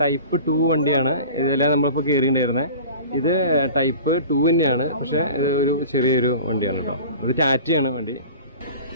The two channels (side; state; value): both; inverted; correlation -0.39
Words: ടൈപ്പ് 2 വണ്ടിയാണ്. ഇതെല്ലാം നമ്മളിപ്പോൾ കയറിയിട്ടുണ്ടായിരുന്നത്. ഇത് ടൈപ്പ് 2 തന്നെയാണ്, പക്ഷേ ഒരു ചെറിയൊരു വണ്ടിയാണ് കേട്ടോ. ഇത് ടാറ്റയാണ് വണ്ടി,